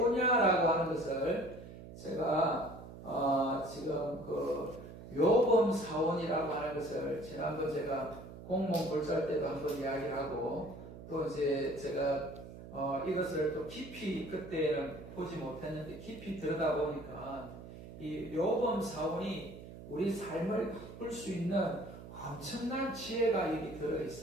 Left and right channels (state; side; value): noise; right; hum, 14 dB below the sound